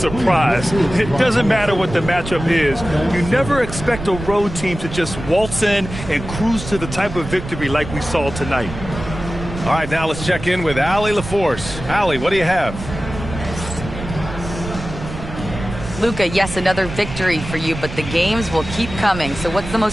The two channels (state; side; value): noise; right; rumble, 9 dB below the sound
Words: It doesn't matter what the matchup is. You never expect a road team to just waltz in and cruise to the type of victory like we saw tonight. All right, now let's check in with Allie LaForce. Allie, what do you have? Luka, yes, another victory for you, but the games will keep coming. So what's the